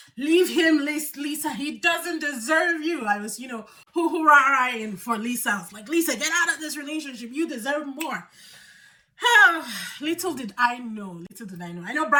Leave him, Lisa. He doesn't deserve you. I was, hoo-hoo-rah-rahing for Lisa. I was like, Lisa, get out of this relationship. You deserve more. Little did I know. I know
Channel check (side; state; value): both; identical; correlation 1.00